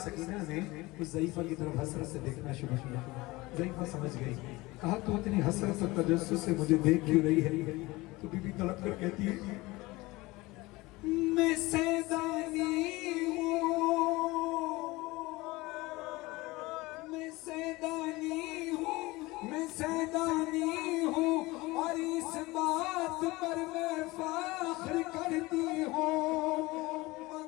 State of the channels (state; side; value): quieter; right; 21.4 dB